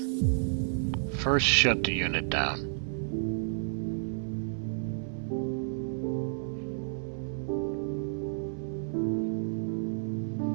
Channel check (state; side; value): silent; left; 57 dB below the other